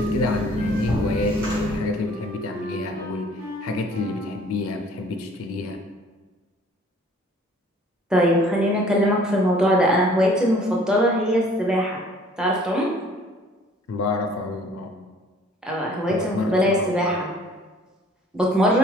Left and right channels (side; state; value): both; normal; correlation 0.54